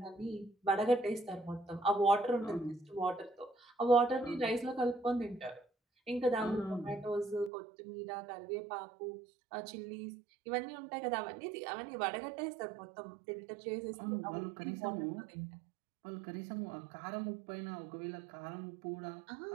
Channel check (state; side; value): drops out; left; at 7.5 s